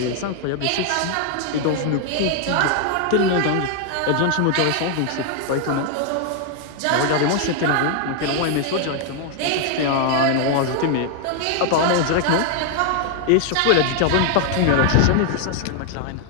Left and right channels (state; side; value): different; both; correlation 0.00